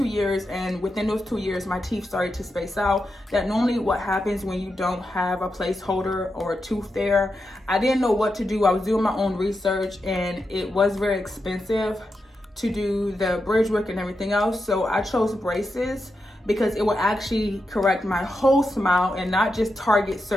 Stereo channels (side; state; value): both; normal; correlation 0.87